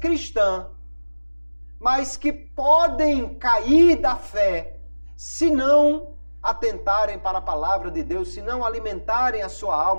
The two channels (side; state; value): both; inverted; correlation -1.00